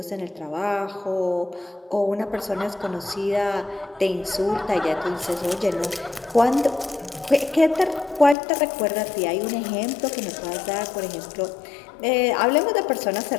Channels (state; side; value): drops out; right; at 8.3 s